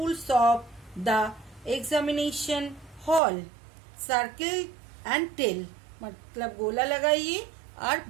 of the examination hall. Circle and tell, मतलब गोला लगाइए और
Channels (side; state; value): left; drops out; at 3.2 s